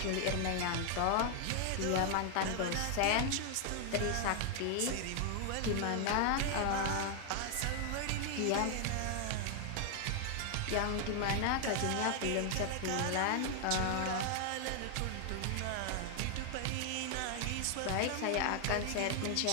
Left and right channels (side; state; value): both; different; correlation 0.00